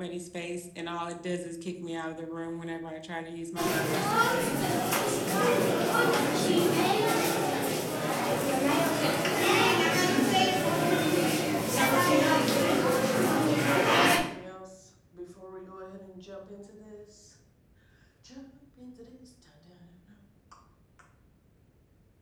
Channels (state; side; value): identical; both; correlation 1.00